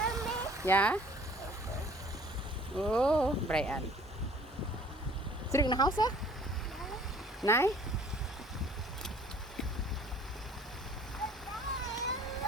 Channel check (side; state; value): both; normal; correlation 0.53